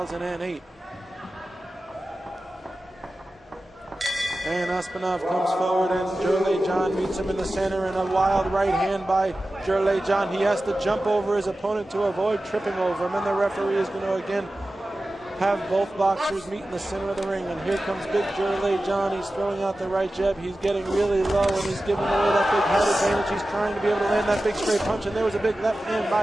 And Оспанов comes forward, and Jharlay John meets him in the center, and a wild right hand by Jharlay John. He has to jump over his opponent to avoid tripping over him, and the referee is going to again have both boxers meet in the center of the ring. And here comes big Jharlay John. He's throwing out the right jab. He's getting really low, and he's giving away that big head advantage. He's trying to be able to land that big straight punch, and there was a big left hand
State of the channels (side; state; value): both; normal; correlation 0.95